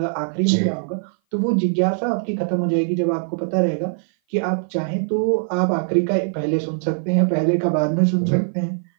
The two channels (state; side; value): silent; left; 57 dB below the other